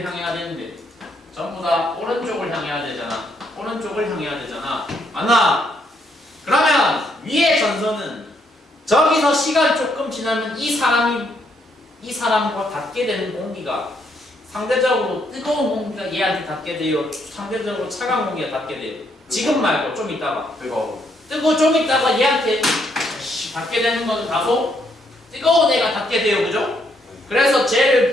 향해야 되는데 전부 다 오른쪽을 향해야 되잖아. 오른쪽을 향해야 되잖아. 맞나? 그러면 위의 전선은 저기서 시간 조금 지나면 이 사람과 닿게 되는 공기가 상대적으로 뜨거운 공기가 얘한테 닿게 돼요. 상대적으로 차가운 공기가 닿게 돼요. 지금 말고 좀 있다가 뜨거워 좀 있다가 얘한테 닿게 되는 것은 다소 뜨거운 애가 닿게 돼요. 그죠? 그래서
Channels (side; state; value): both; normal; correlation 0.73